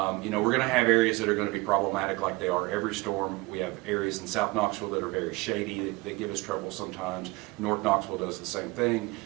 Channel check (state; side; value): quieter; left; 23.4 dB